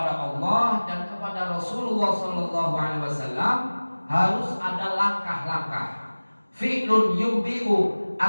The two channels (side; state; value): both; inverted; correlation -1.00